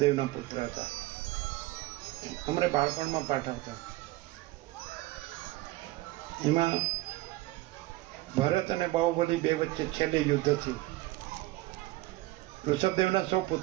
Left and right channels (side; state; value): left; quieter; 18.6 dB